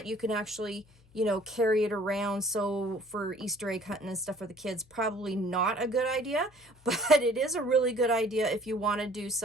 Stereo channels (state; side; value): noise; left; hum, 29 dB below the sound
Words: you can actually, you know, carry it around. So for Easter egg hunting and stuff for the kids, probably not a good idea, but it is a really good idea if you want to do